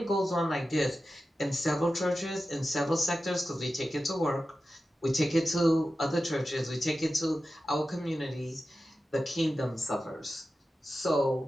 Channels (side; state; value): both; normal; correlation 0.93